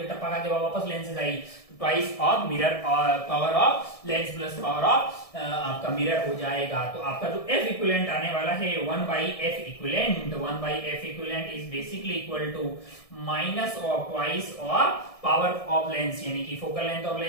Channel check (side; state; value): right; late; 1.7 ms